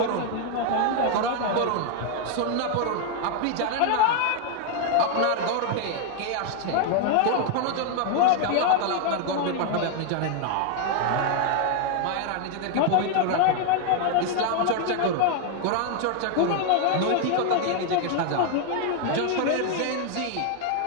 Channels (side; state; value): both; different; correlation 0.00